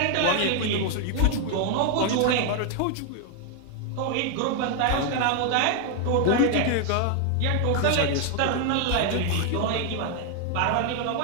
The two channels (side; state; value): both; different; correlation 0.00